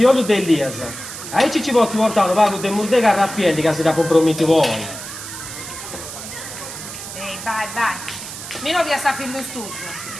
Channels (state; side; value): noise; right; hiss, 10 dB below the sound